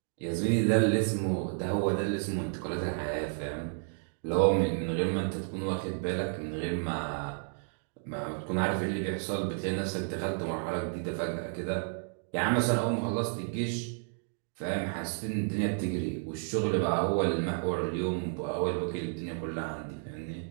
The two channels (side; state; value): left; silent; 57 dB below the other